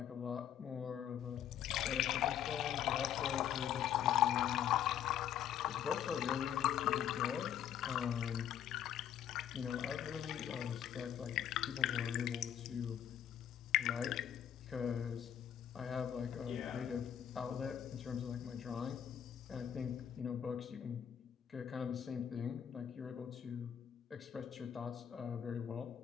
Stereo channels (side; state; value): right; quieter; 9.8 dB